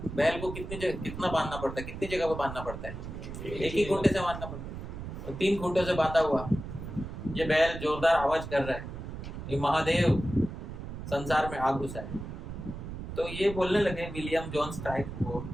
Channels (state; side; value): noise; right; rumble, 9 dB below the sound